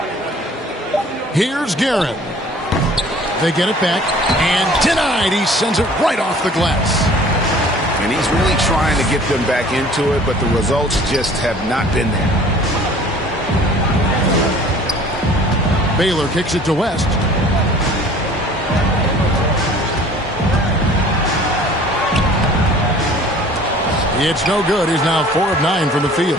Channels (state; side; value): normal; both; correlation 0.50